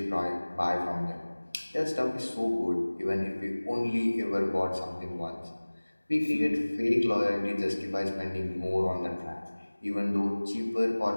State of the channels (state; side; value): inverted; both; correlation -1.00